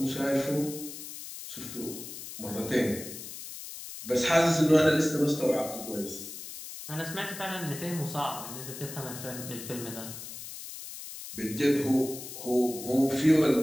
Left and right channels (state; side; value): noise; left; hiss, 11 dB below the sound